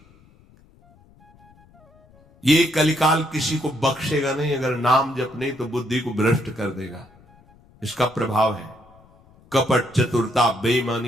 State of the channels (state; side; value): noise; left; rumble, 28 dB below the sound